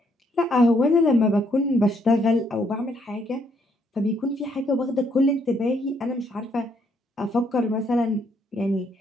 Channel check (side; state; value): both; normal; correlation 0.71